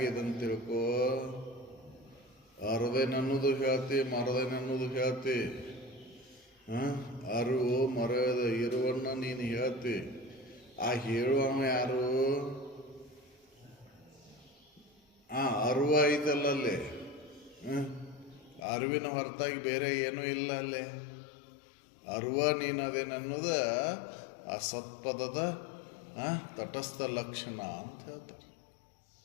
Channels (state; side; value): drops out; right; at 18.6 s